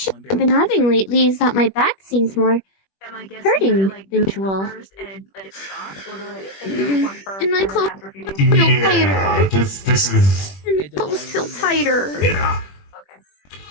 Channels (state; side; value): late; right; 21 ms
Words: I've been having lately is that my back seems more Am I guessing hurting that, like, than do it usual. first and let it stop, or do I take one first And my and then clothes after a few days? feel yeah, tighter. this is And my clothes feel tighter. yeah. Okay.